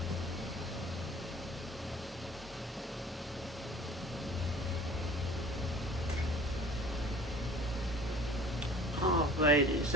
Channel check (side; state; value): both; normal; correlation 0.46